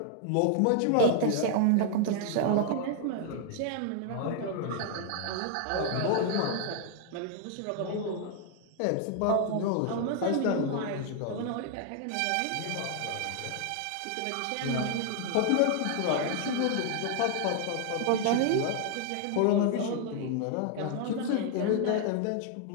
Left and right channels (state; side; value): different; both; correlation 0.00